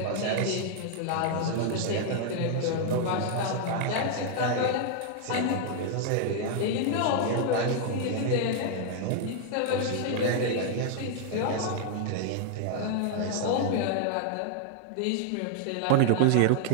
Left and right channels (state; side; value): different; both; correlation 0.00